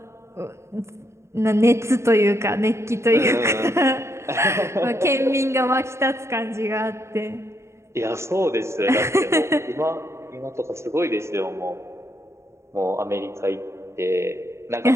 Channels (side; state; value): left; late; 0.13 ms